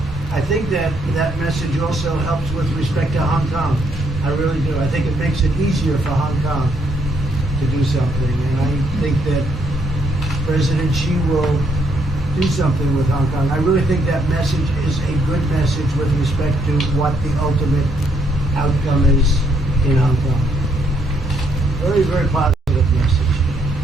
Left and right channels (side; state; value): both; normal; correlation 0.72